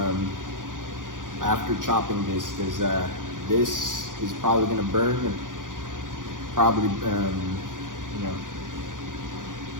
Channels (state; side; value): late; left; 0.89 ms